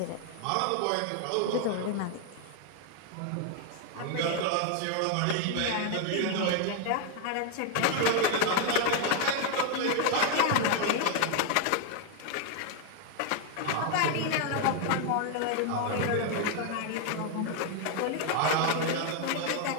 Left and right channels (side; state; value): both; different; correlation 0.00